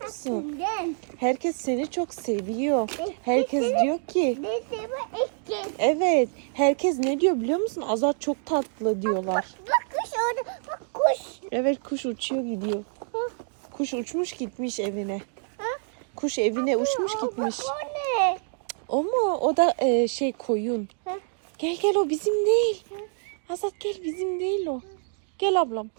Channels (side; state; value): left; silent; digital silence